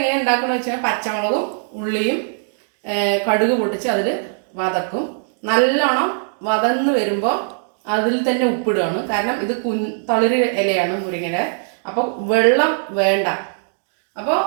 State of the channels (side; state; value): left; silent; 66 dB below the other